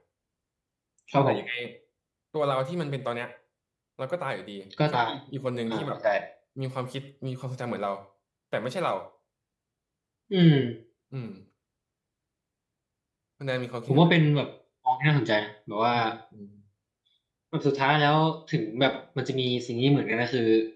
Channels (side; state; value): both; identical; correlation 1.00